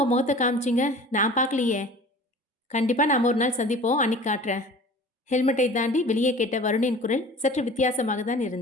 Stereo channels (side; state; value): both; normal; correlation 0.43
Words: முகத்தை காமிச்சிங்க, நான் பார்க்கலையே. கண்டிப்பாக நாம் ஒரு நாள் சந்திப்போம், அன்னைக்கு காட்டுறேன். ஹெல்மெட்டை தாண்டி வெளியே கேட்ட வருணின் குரல் சற்று வித்தியாசமாக தான்